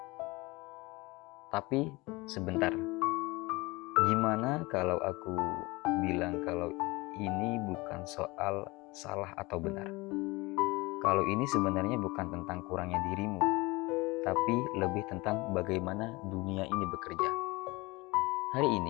Tapi sebentar, gimana kalau aku bilang kalau ini bukan soal salah atau benar? Kalau ini sebenarnya bukan tentang kurangnya dirimu, tapi lebih tentang bagaimana dunia ini bekerja. Hari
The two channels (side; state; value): right; quieter; 23.3 dB